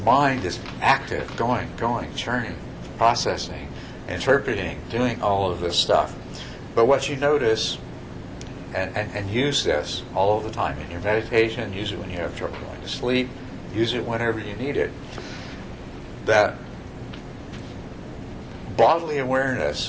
is active, going, churning, processing, interpreting, doing all of this stuff. But what you notice, and use this all of the time in your meditation, use it when you have trouble going to sleep, use it whenever you need it, that bodily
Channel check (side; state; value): both; identical; correlation 1.00